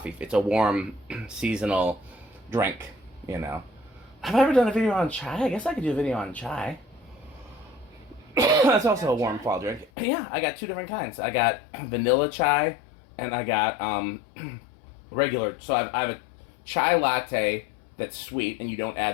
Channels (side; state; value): right; drops out; at 9.9 s